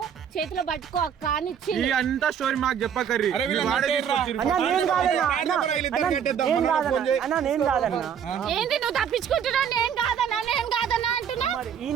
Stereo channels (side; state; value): left; quieter; 8.1 dB